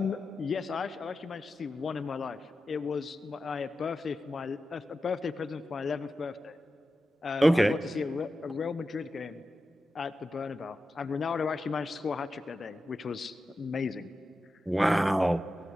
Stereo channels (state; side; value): normal; both; correlation 0.92